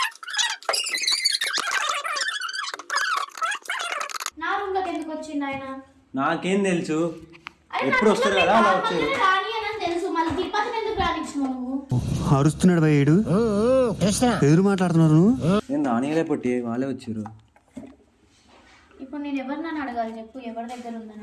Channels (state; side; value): identical; both; correlation 1.00